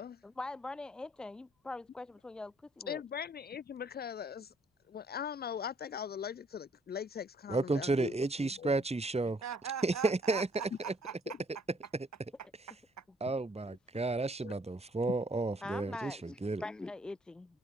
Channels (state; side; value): normal; both; correlation 0.65